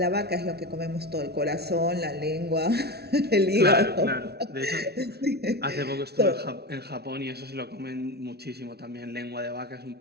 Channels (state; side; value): late; left; 0.47 ms